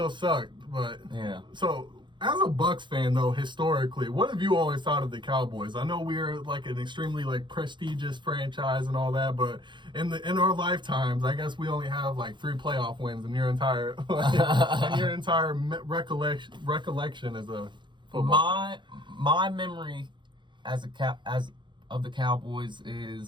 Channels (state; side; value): late; left; 0.23 ms